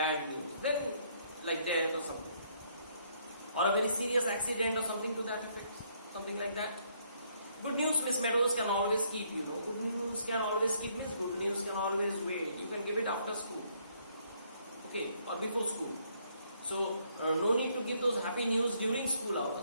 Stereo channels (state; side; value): inverted; both; correlation -0.69